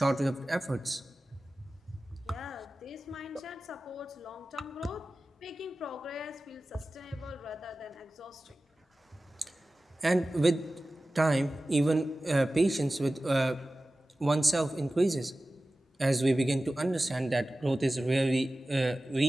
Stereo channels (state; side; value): normal; both; correlation 0.96